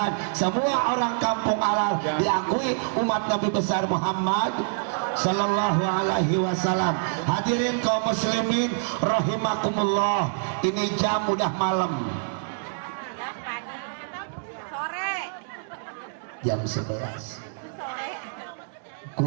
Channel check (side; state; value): left; silent; digital silence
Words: semua orang kampung Alar diakui umat Nabi besar Muhammad sallallahu alaihi wasallam. Hadirin kaum muslimin rahimakumullah, ini jam udah malam, jam 11.